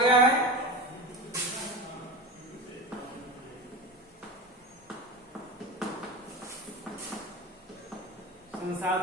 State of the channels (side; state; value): both; normal; correlation 0.27